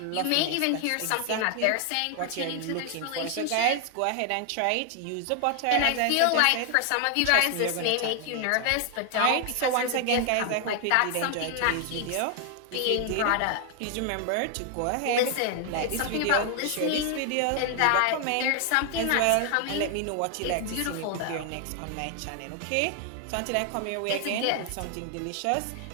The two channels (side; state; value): both; different; correlation 0.00